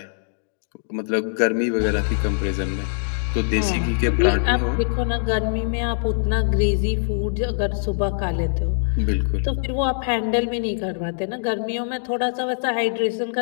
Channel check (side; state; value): right; silent; digital silence